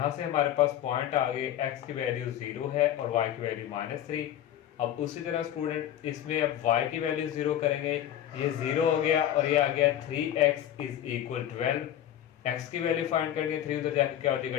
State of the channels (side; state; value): right; quieter; 11.3 dB